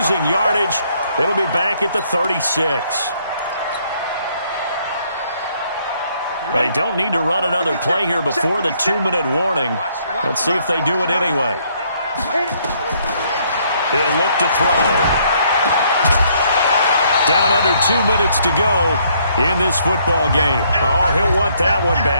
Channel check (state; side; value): inverted; both; correlation -0.68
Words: yardage. It'll be back at the 36. They don't need to run another play here before the 2-minute warning. Let's see if they do it anyway. He'll look to throw. Down under 2 minutes to go in this football game. Oh, he'll want that one